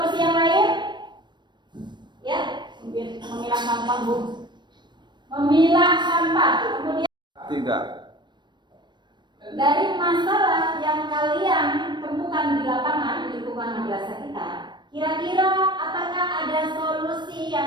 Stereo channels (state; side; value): late; left; 0.22 ms